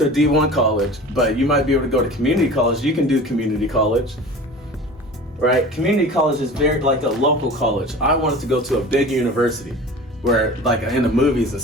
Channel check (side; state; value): both; normal; correlation 0.38